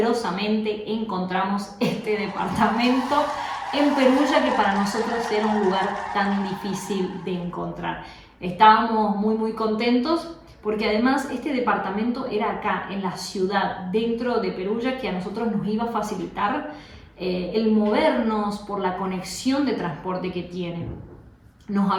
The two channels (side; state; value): both; identical; correlation 1.00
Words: encontramos este departamento en Perugia, que para nosotros era un lugar tan difícil de encontrar. Estábamos muy contentos porque además este departamento era acá, en la ciudad, dentro de Perugia, que a nosotros nos iba a facilitar el movernos por la conexión de transporte que tiene. Nos